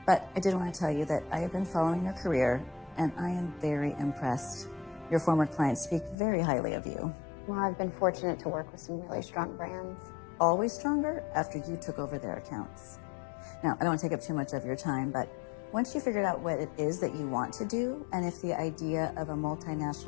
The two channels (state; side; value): drops out; right; at 6.2 s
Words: But I did want to tell you that I have been following your career, and I am very impressed. Your former clients speak very highly of you. Well, I've been fortunate to work with some really strong brands. Always stronger after you took over their accounts. Now, I don't want to take up too much of your time, but once you figured out what it is that you want to do, and if the idea of a